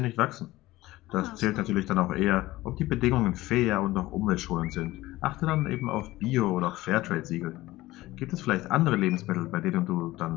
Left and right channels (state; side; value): quieter; right; 17.8 dB